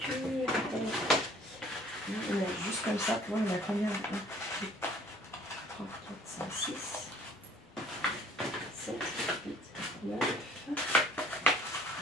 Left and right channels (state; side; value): normal; both; correlation 0.54